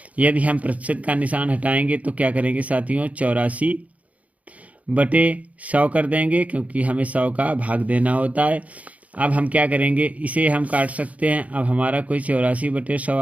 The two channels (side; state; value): left; late; 0.069 ms